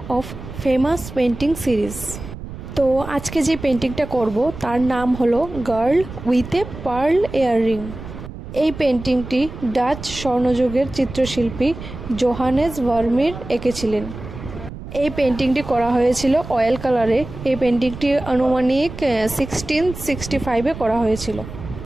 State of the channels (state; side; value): noise; right; rumble, 12 dB below the sound